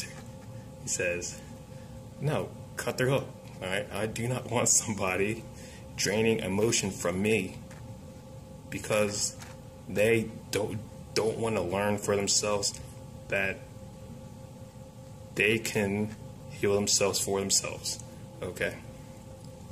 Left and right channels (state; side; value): identical; both; correlation 1.00